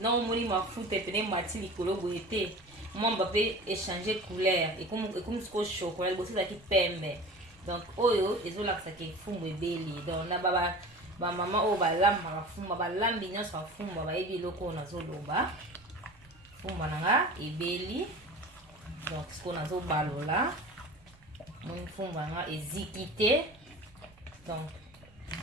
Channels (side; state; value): right; noise; rumble, 27 dB below the sound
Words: na omoni mafuta epene mati likolo boye te mwamba pe échanger couleur ekomi siko chocolat liboso ezalaki pembe. Donc oyo ezolakisaka fumbwa ebeli. Donc na ba mama oyo balambaka fumbwa balambi nyonso ya fumbwa bayebi eloko oyo nazoloba fumbwa nanga ebeli. Donc siko nazobalola moni fumbwa nanga eziki te. Donc